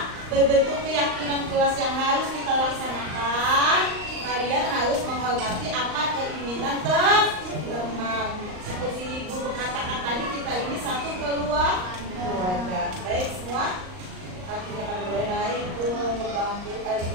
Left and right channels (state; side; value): late; left; 38 ms